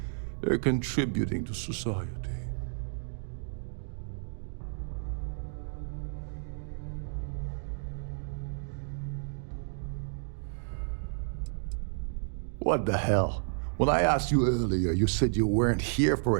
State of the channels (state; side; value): silent; left; digital silence